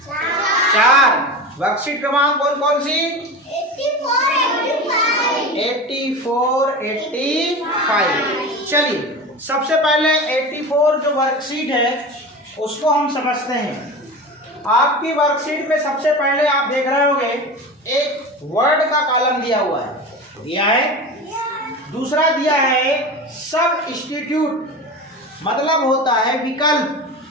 4, वर्कशीट क्रमांक कौन कौन सी 84, 85। चलिए सबसे पहले 84 जो वर्कशीट है उसको हम समझते हैं। आपकी वर्कशीट में सबसे पहले आप देख रहे होंगे एक वर्ड का कॉलम दिया हुआ है, दिया है। दूसरा दिया है सब्स्टिट्यूट, मतलब होता है विकल्प,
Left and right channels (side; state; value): both; normal; correlation 0.29